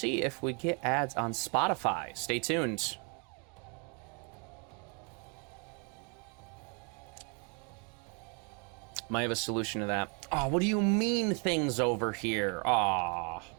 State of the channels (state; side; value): quieter; left; 35.8 dB